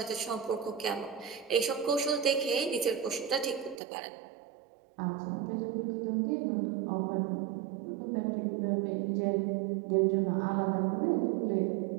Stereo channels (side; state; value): left; drops out; at 3.8 s